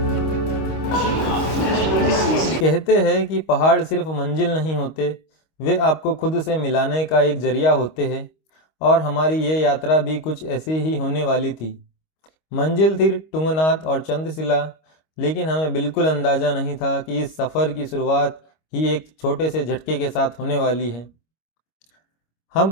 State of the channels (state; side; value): late; right; 25 ms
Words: कहते हैं कि पहाड़ सिर्फ मंजिल नहीं होते, वे आपको खुद से मिलाने का एक जरिया होते हैं। और हमारी ये यात्रा भी कुछ ऐसी ही होने वाली थी। मंजिल थी तुंगनाथ और चंद्रशिला, लेकिन हमें बिल्कुल अंदाजा नहीं था कि इस सफ़र की शुरुआत ही एक छोटे से झटके के साथ होने वाली है। हम